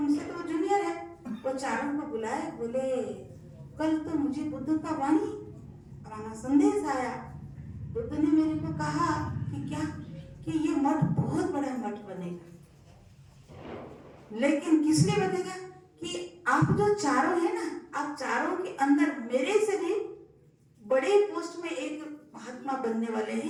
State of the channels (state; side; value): identical; both; correlation 1.00